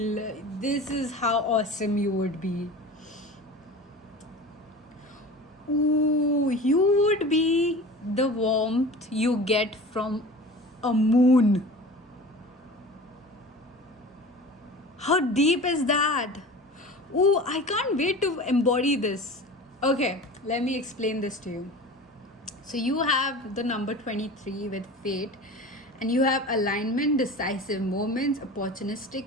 this is how awesome you would be. Ooh, you would be the warmth you get from a moon. How deep is that? Ooh, I can't wait to embody this. Okay, let me explain this to you. So you have the number 23 with fate, and you have alignment, decisive moments,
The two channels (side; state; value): both; normal; correlation 0.36